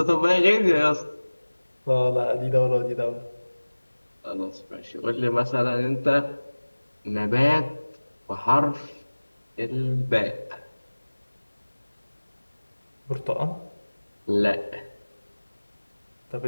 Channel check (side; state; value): both; inverted; correlation -1.00